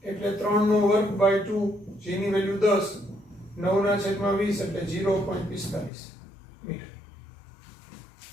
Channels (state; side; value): drops out; right; at 5.9 s